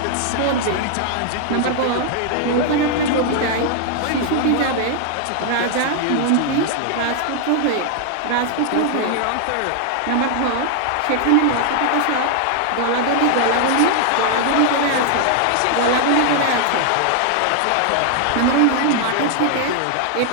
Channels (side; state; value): both; different; correlation 0.00